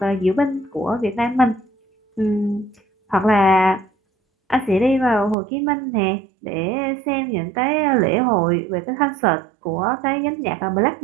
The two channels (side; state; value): left; drops out; at 5.4 s